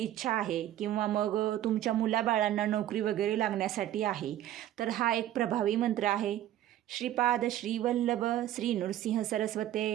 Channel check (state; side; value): quieter; left; 12.7 dB